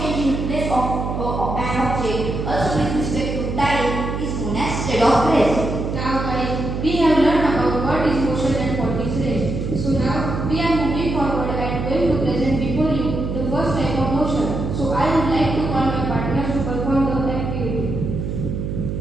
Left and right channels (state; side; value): noise; right; hum, 3 dB below the sound